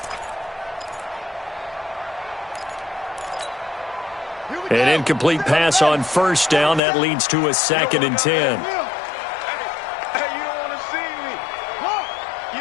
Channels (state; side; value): drops out; right; at 6.8 s